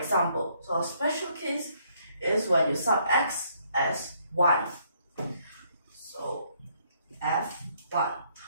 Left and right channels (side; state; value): both; inverted; correlation -0.69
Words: So our special case is when you sub x as 1. So f1.